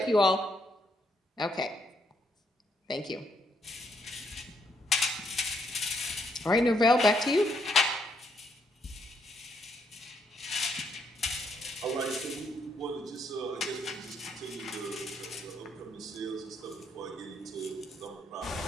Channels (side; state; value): both; normal; correlation 0.74